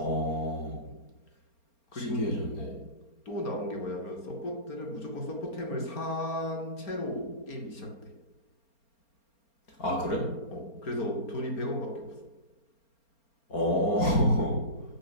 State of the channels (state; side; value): late; right; 4.3 ms